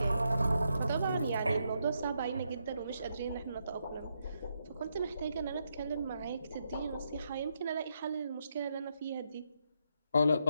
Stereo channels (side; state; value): both; inverted; correlation -0.80